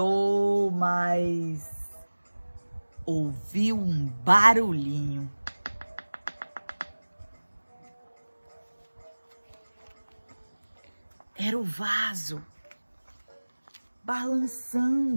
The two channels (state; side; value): inverted; both; correlation -1.00